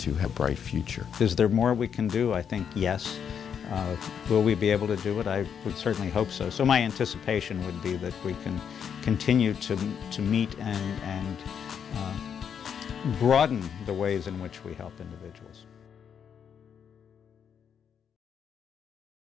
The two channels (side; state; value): right; quieter; 7.7 dB